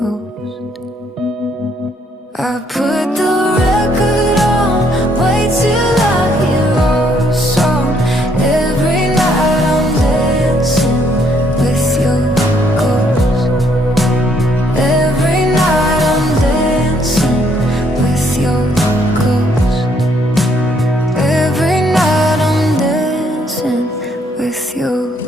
I put the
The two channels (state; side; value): normal; both; correlation 0.69